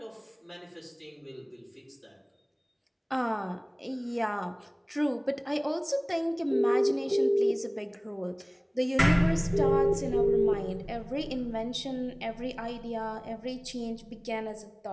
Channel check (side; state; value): both; identical; correlation 1.00